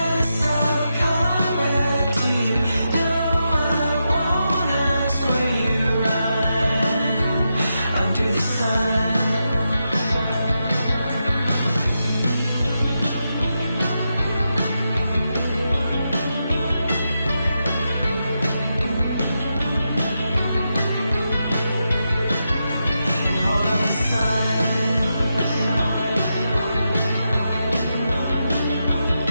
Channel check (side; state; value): both; inverted; correlation -0.87